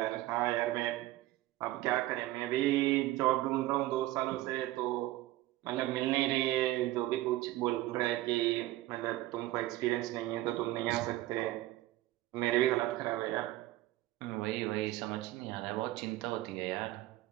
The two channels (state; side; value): quieter; left; 16.7 dB